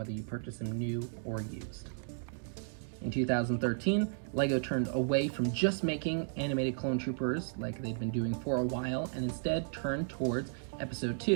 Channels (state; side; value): silent; left; digital silence